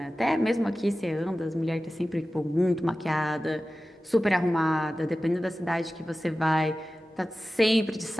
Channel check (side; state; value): both; normal; correlation 0.95